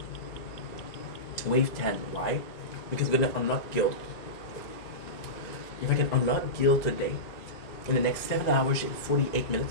Wave 10. Why? Because we're gonna unlock guild. If I can unlock guild today, in the next 7 hours and 48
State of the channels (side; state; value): right; late; 2.0 ms